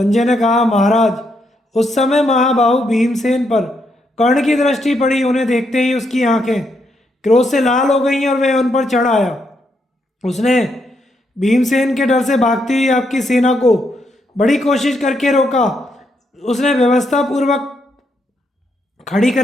ने कहा, महाराज, उस समय महाबाहु भीमसेन पर कर्ण की दृष्टि पड़ी। उन्हें देखते ही उसकी आंखें क्रोध से लाल हो गईं और वह उन पर चढ़ आया। उसने भीमसेन के डर से भागती हुई आपकी सेना को बड़ी कोशिश करके रोका। उसने व्यवस्था पूर्वक खड़ी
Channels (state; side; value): normal; both; correlation 0.78